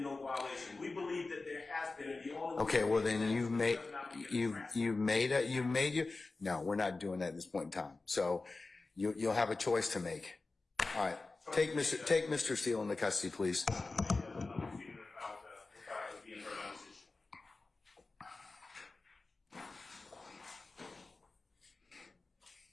no violation. We believe that there has been, and the only. Okay, well then no, we're not doing that at this point in time. So you'll have a choice to make. All right, take Mr. Steele into custody, please.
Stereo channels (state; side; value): quieter; right; 3.6 dB